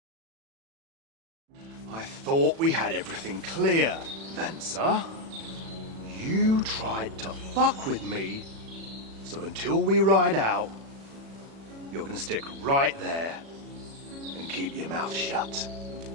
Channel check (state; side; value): late; left; 36 ms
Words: I thought we had everything clear, Venser. You tried to fuck with me, so until we ride out, you're gonna stick right there and keep your mouth shut.